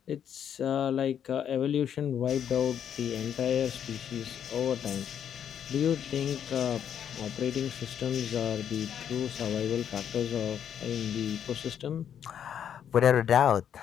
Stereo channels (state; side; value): quieter; right; 9.0 dB